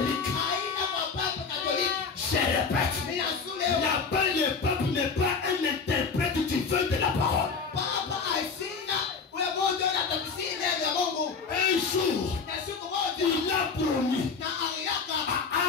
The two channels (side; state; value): right; quieter; 5.2 dB